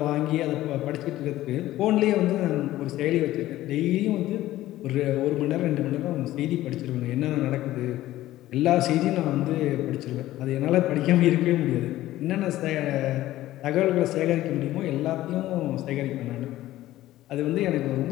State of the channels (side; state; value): right; quieter; 15.2 dB